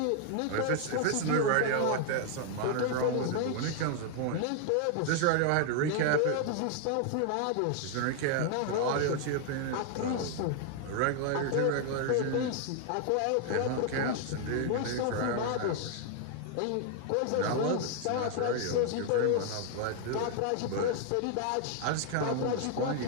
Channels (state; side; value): different; both; correlation 0.00